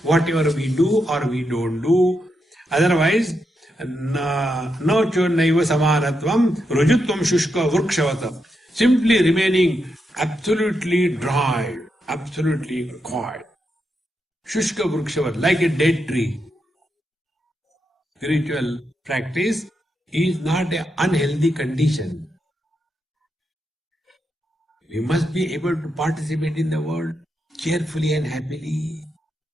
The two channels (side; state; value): both; normal; correlation 0.84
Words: whatever we do or we don't do, otherwise, no chonnaiva samanatvam rujutvam shushka vrukshavatam, simply remaining absolutely dry, absolutely quiet. Shushka vrukshavatam, like a dead tree. Spiritual practice is not an unhealthy condition. We must be able to participate in the world cheerfully and happily.